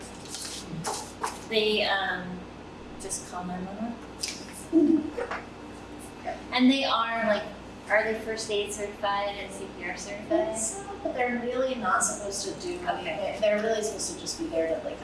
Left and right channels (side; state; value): both; identical; correlation 1.00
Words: They just call 911. And they are they first aid certified and CPR certified? But they're really not supposed to do anything. They're really supposed to just be there to